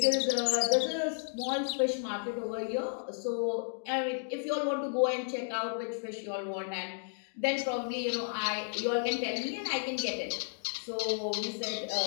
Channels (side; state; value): right; silent; digital silence